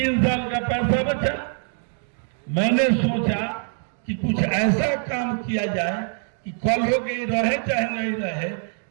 साल का पैसा बचा। मैंने सोचा कि कुछ ऐसा काम किया जाए कि कल हो गई रहे चाहे नहीं रहे,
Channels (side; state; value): left; silent; 58 dB below the other